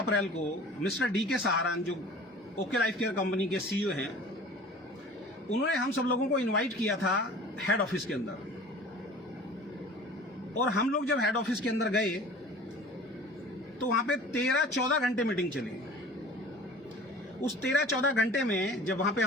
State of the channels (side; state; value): both; normal; correlation 0.43